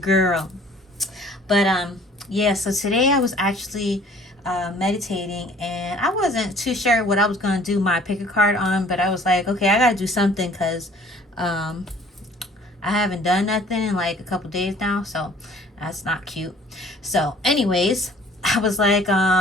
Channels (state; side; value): normal; both; correlation 0.53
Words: But yeah, so today I was actually meditating, and I wasn't too sure what I was going to do my PickACard on, but I was like, okay, I got to do something because I haven't done nothing in like a couple days now, so that's not cute. So anyways, I was like,